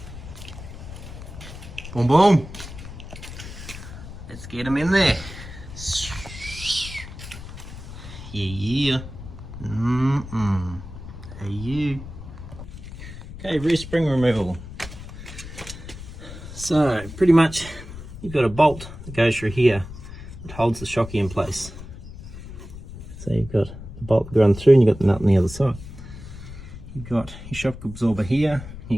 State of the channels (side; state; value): left; noise; rumble, 13 dB below the sound